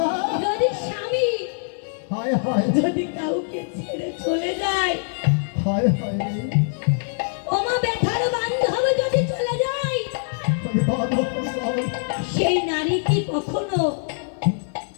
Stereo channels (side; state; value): right; silent; 63 dB below the other